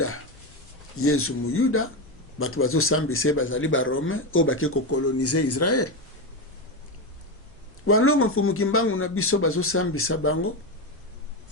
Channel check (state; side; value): normal; both; correlation 0.13